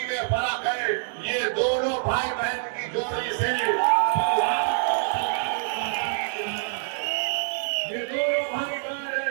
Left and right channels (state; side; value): silent; left; digital silence